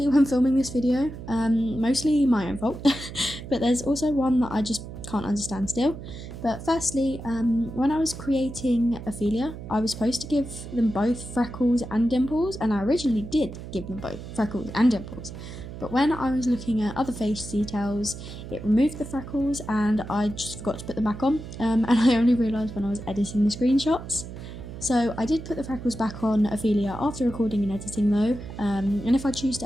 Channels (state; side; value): noise; right; hum, 11 dB below the sound